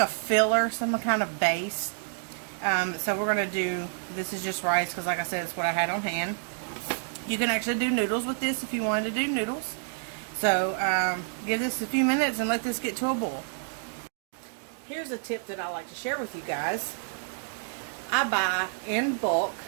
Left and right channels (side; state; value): left; silent; digital silence